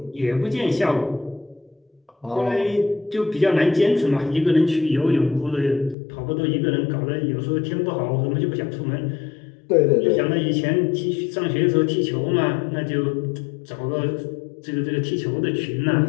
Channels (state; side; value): drops out; right; at 6.0 s